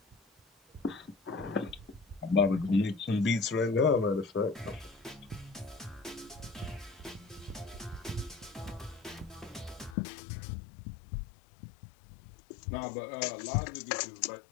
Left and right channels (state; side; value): drops out; right; at 10.0 s